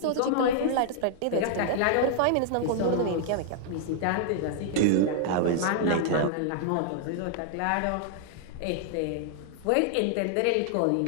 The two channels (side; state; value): both; different; correlation -0.01